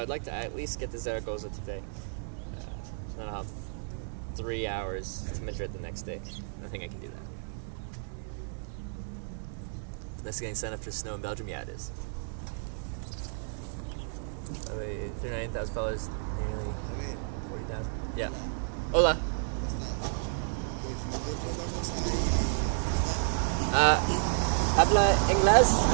like to at least get to Zaragoza today. Then I'll have 3 hours to Madrid the next day. I think I can do that. This getting sent after snow in Belgium? Yeah, it is. 39,000 followers, nearly 40,000. Yeah. Hola. Habla inglés?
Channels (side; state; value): left; silent; digital silence